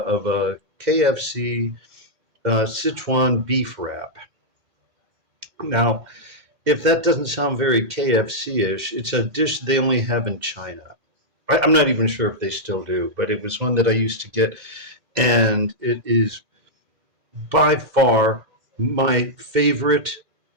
a KFC Sichuan beef wrap. Now, if that doesn't sound very KFC-ish, it's a dish they only have in China. I'm not even sure if they still do, but it was one that I used to get, and it is by far my favorite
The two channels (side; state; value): left; late; 2.1 ms